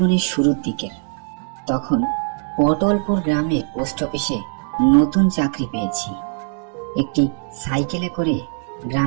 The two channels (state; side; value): silent; left; 65 dB below the other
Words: শুরুর দিকের। তখন পটলপুর গ্রামে পোস্ট অফিসে নতুন চাকরি পেয়েছি। একটি সাইকেলে করে